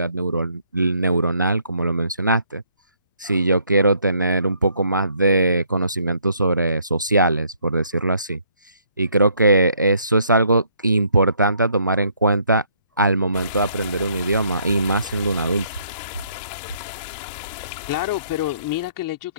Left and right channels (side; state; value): both; inverted; correlation -0.67